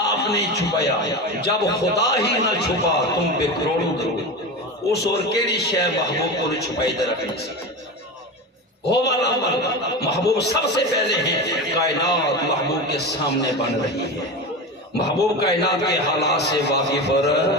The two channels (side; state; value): both; normal; correlation 0.24